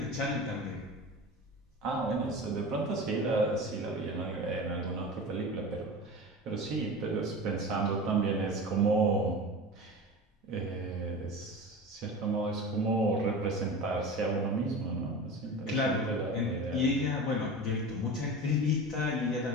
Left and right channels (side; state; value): both; normal; correlation 0.31